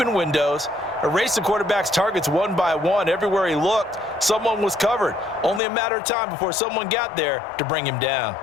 windows, erased the quarterback's targets one by one. Everywhere he looked, someone was covered. Only a matter of time before someone got there to bring him down.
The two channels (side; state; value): right; drops out; at 5.6 s